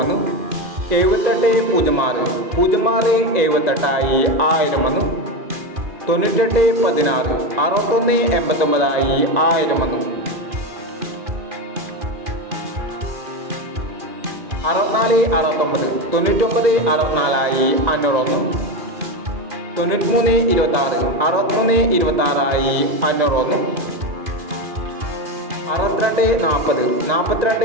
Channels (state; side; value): late; left; 2.4 ms